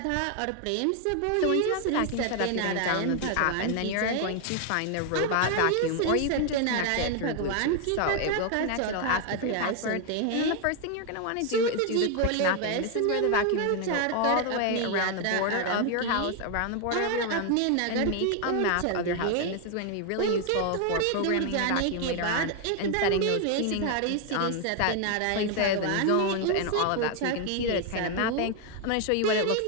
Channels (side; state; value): both; different; correlation 0.01